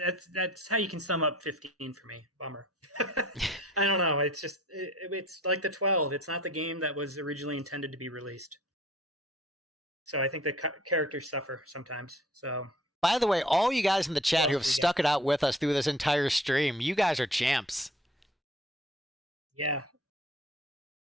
that's how you can sum up 15 for me. Bummer. I don't know. It's just it's like the 12. It's not the game that was originally intended to be released. So I think the characters suffer sometimes. So, by the way, all you guys in the chat who have stuck it out with us through this entire stream, you guys are champs. Yeah.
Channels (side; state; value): both; normal; correlation 0.52